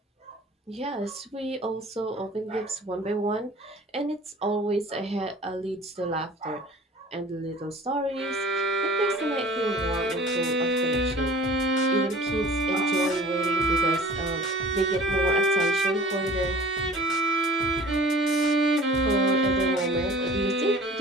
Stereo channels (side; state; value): both; normal; correlation 0.45